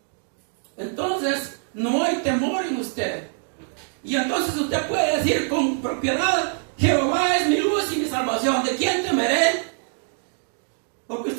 Entonces, no hay temor en usted. Y entonces usted puede decir con propiedad, Jehová es mi luz y mi salvación. ¿De quién temeré? Porque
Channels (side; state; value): left; silent; 58 dB below the other